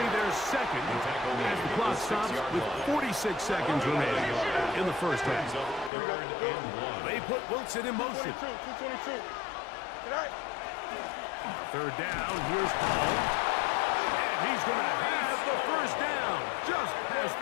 their second as the clock stops with 46 seconds remaining in the first half. Third and 1. They put Wilson in motion. 222. Tonight. Third down, here's Hall. And he's going to have the first down. Just past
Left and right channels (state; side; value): drops out; right; at 5.9 s